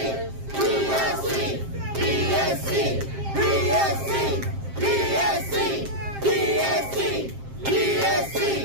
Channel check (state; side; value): late; left; 7.5 ms